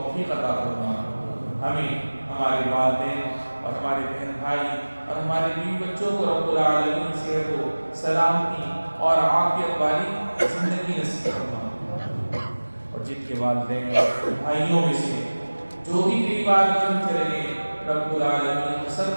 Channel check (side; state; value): both; inverted; correlation -1.00